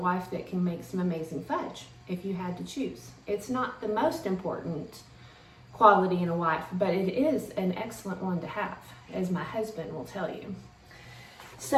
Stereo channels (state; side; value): identical; both; correlation 1.00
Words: that can make some amazing fudge if you had to choose. It's not the most important quality in a wife, but it is an excellent one to have, as my husband will tell you.